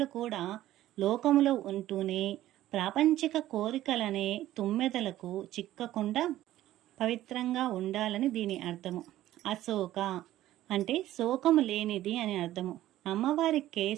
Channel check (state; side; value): quieter; left; 14.2 dB